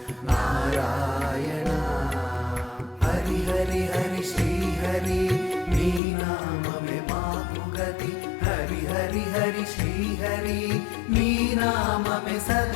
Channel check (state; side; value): drops out; right; at 6.0 s